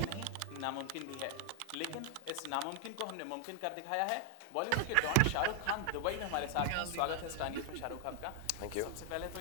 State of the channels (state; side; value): different; both; correlation 0.00